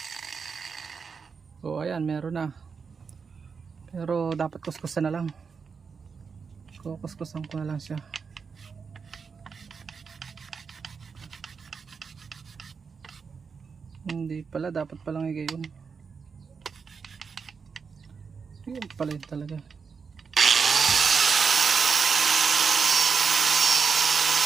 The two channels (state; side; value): quieter; left; 5.6 dB